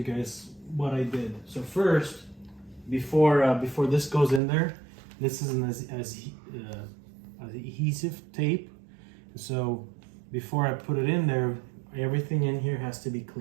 guys what I did. So first, before this goes in there, this is an adhesive tape. So before I put it in there, everything in here has to be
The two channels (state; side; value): drops out; left; at 4.4 s